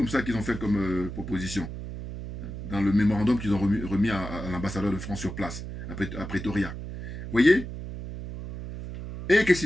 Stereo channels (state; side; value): noise; right; hum, 8 dB below the sound